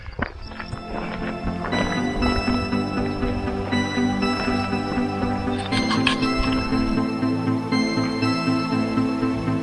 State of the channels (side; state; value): both; identical; correlation 1.00